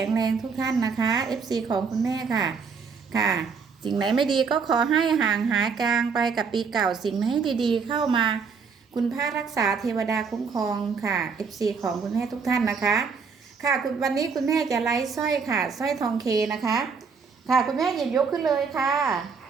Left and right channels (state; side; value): quieter; left; 5.6 dB